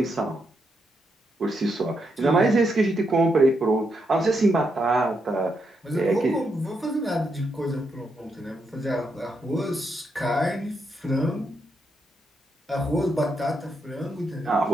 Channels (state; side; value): normal; both; correlation 0.81